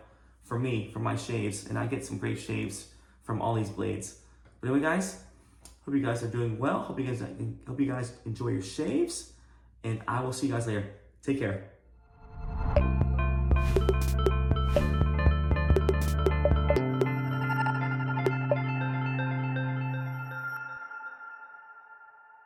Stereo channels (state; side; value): identical; both; correlation 1.00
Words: for me, for my shaves, and I get some great shaves from all these blades. But anyway, guys, hope you guys are doing well. Hope you guys enjoy your shaves, and I will see you guys later. Take care.